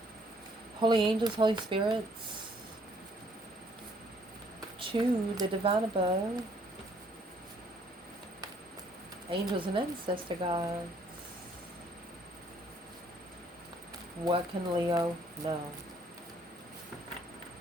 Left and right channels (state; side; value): normal; both; correlation 0.64